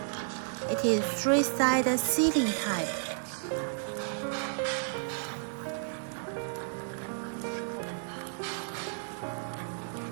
It is three-sided sealing type.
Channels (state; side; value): silent; left; digital silence